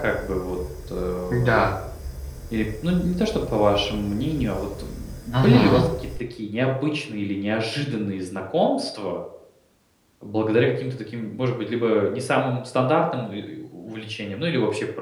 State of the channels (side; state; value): both; identical; correlation 1.00